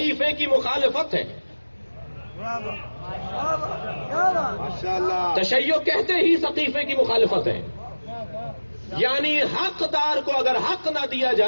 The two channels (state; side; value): inverted; both; correlation -1.00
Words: کی مخالفت ہے. ماشاءاللہ. تشیع کہتے ہی سقیفے کی مخالفت ہے، یعنی حقدار کو اگر حق نہ دیا